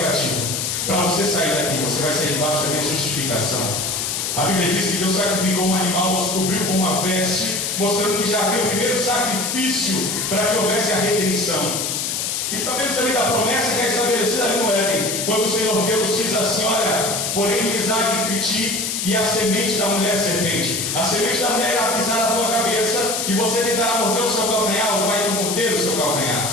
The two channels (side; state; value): left; noise; hiss, 1 dB below the sound